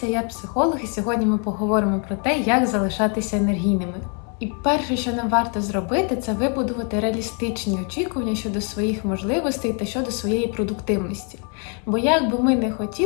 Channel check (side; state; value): right; quieter; 38.9 dB